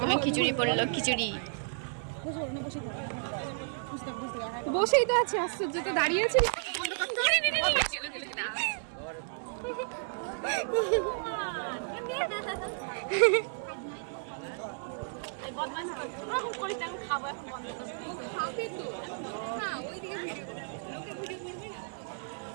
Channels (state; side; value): silent; left; digital silence